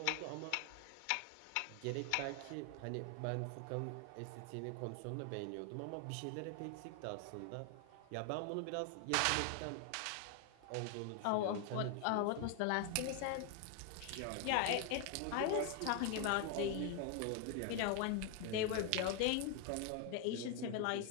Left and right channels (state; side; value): different; both; correlation 0.01